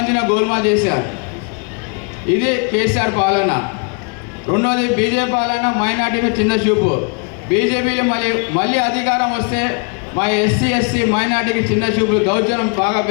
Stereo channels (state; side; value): quieter; right; 37.2 dB